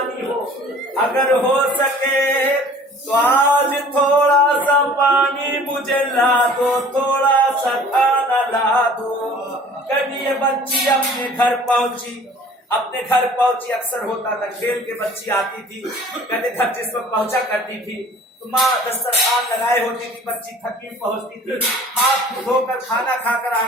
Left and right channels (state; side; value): normal; both; correlation 0.49